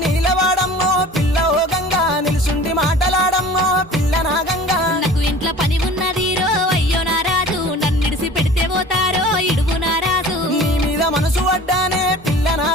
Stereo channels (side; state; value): both; normal; correlation 0.43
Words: నీలవాడమ్మో పిల్ల ఓ గంగా నిలుసుండి మాటలాడమ్మో పిల్ల నా గంగా నాకు ఇంట్లో పని ఉన్నది రో అయ్యో నా రాజు నన్నిడిసి పెడితే పోతారో ఇడుగు నా రాజు నీ మీద మనసు పడ్డానే పిల్ల నా